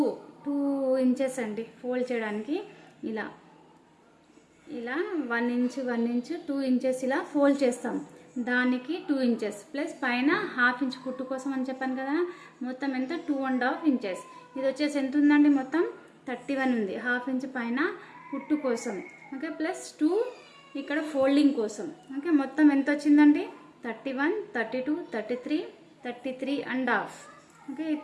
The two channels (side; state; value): both; identical; correlation 1.00